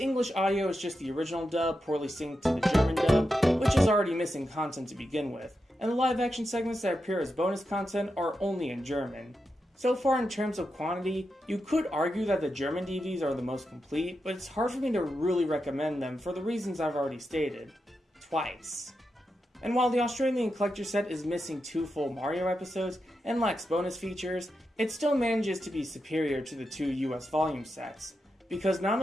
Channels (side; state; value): both; normal; correlation 0.88